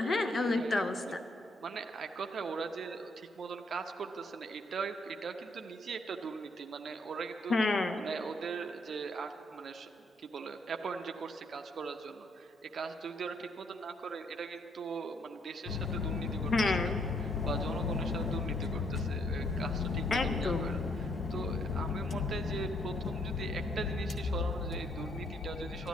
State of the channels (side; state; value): both; normal; correlation 0.70